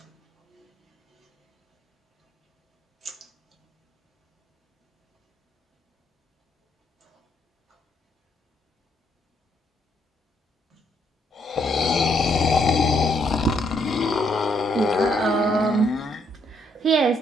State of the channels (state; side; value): normal; both; correlation 0.72